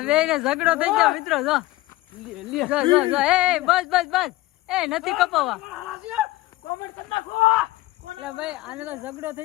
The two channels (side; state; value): right; quieter; 18.3 dB